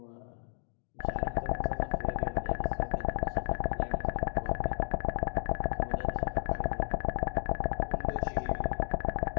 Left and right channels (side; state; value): right; silent; digital silence